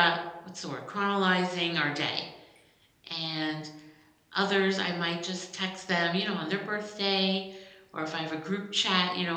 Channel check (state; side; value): identical; both; correlation 1.00